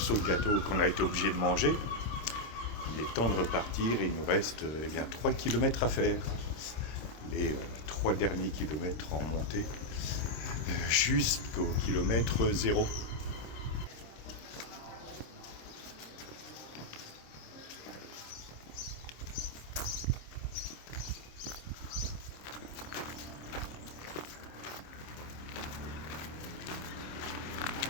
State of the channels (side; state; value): right; late; 26 ms